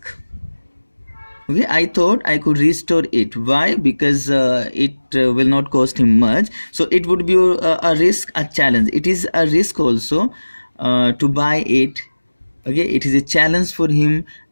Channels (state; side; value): inverted; both; correlation -1.00